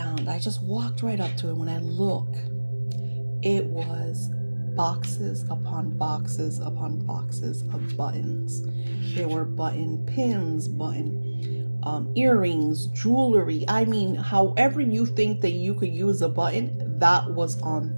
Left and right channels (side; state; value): both; inverted; correlation -1.00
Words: I just walked right up to it. When I look, it was boxes upon boxes upon boxes of buttons. There were button pins, button earrings, jewelry. I mean, however you think that you could use a button, that was on